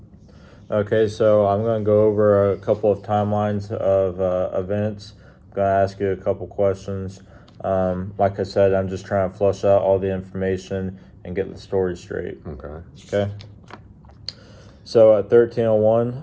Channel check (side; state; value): both; identical; correlation 1.00